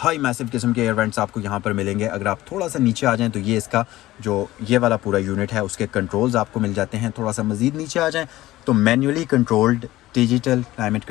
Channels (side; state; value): right; quieter; 16.4 dB